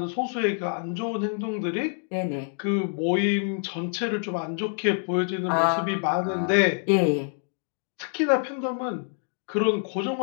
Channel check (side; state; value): right; silent; 61 dB below the other